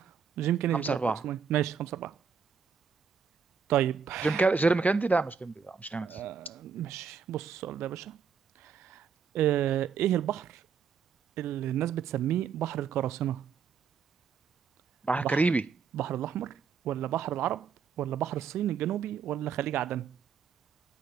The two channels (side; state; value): left; quieter; 6.6 dB